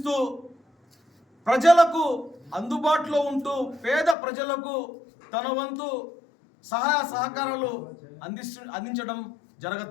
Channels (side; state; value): right; drops out; at 4.2 s